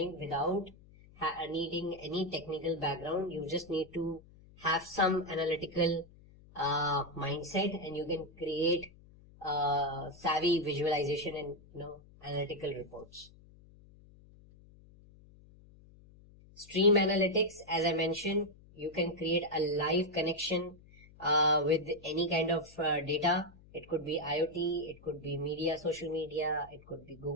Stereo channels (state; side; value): noise; left; hum, 24 dB below the sound